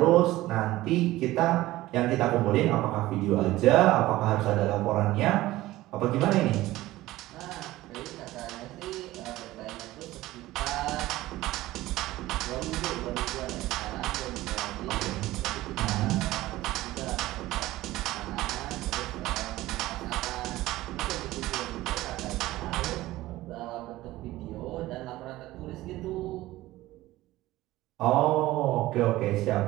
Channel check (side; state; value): left; quieter; 17.0 dB